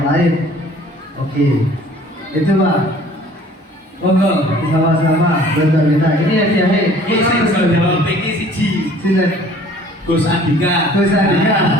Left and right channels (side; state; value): both; normal; correlation 0.52